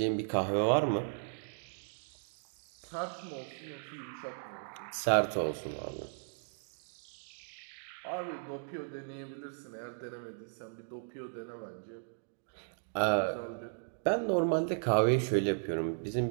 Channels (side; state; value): left; silent; digital silence